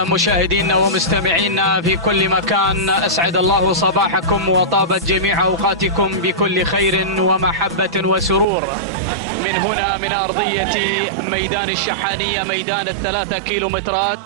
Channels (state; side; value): drops out; left; at 8.5 s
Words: مشاهدينا ومستمعينا في كل مكان، أسعد الله صباحكم وطابت جميع أوقاتكم بكل خير ومحبة وسرور. من هنا من أرضية ميدان الشحانية، ميدان ال3